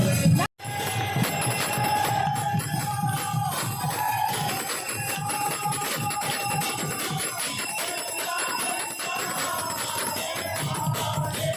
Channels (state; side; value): identical; both; correlation 1.00